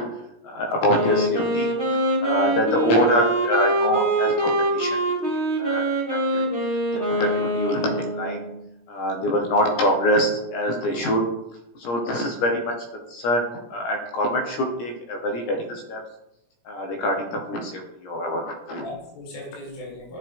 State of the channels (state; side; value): late; right; 17 ms